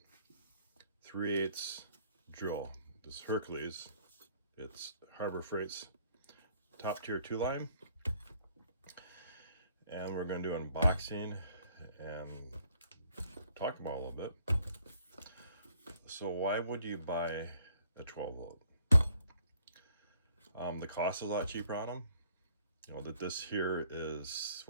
3/8 drill. This Hercules, it's Harbor Freight's top tier 2 line, and we're going to do unboxing and talk about it a little bit. So why would you buy a 12 volt? The cost is a lot cheaper on them. You know that this here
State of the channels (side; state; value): both; inverted; correlation -0.64